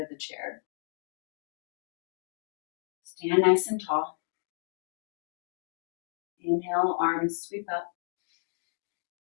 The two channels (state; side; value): silent; right; digital silence